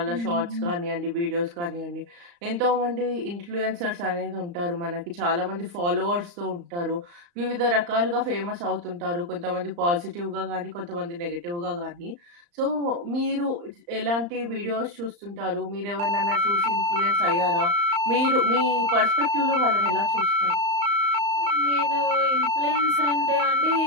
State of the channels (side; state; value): left; late; 35 ms